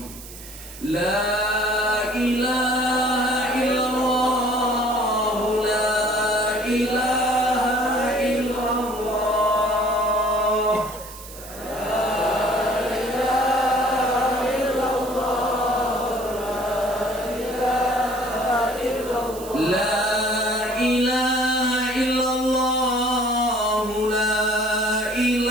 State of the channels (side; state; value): right; noise; hiss, 16 dB below the sound